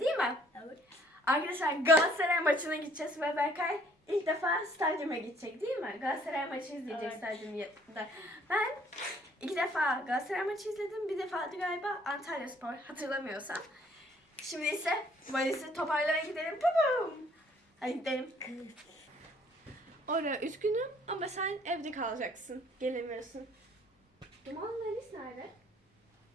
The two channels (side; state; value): both; normal; correlation 0.60